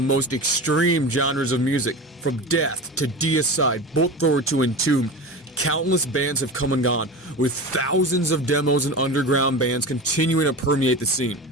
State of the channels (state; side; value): normal; both; correlation 0.29